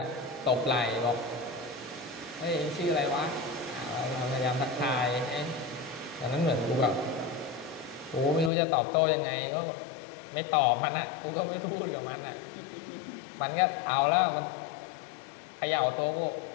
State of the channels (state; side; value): drops out; right; at 8.5 s